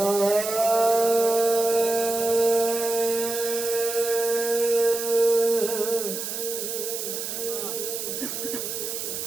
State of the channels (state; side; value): noise; right; hiss, 5 dB below the sound